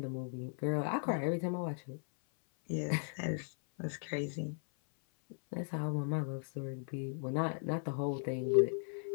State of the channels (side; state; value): right; silent; 53 dB below the other